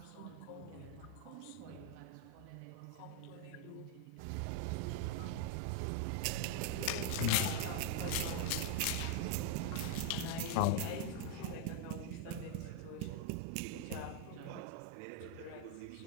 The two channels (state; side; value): different; both; correlation 0.00